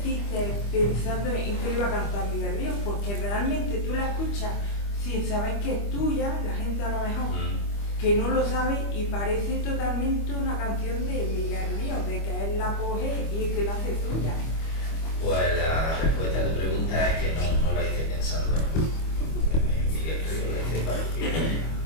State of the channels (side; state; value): right; late; 25 ms